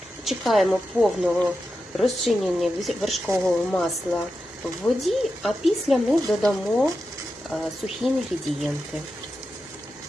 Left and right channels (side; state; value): both; normal; correlation 0.90